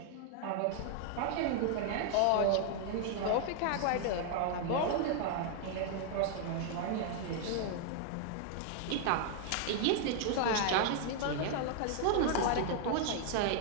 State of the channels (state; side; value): different; both; correlation 0.00